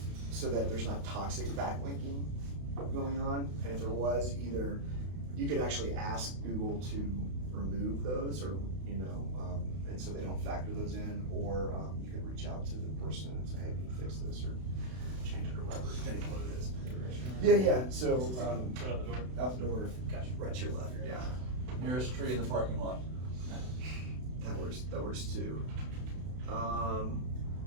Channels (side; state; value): left; late; 32 ms